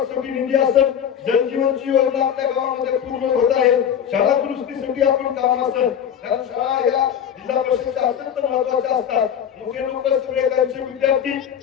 निधी असेल, जलजीवनची योजना आपल्या गावामध्ये पूर्ण होत आहे, शाळा दुरुस्तीसाठी आपण काम असेल, कारण शाळा या जिल्हा परिषदेच्या अत्यंत महत्वाच्या असतात. मोठे लोक सगळे त्यांचे विद्यार्थी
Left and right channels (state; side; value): quieter; right; 8.8 dB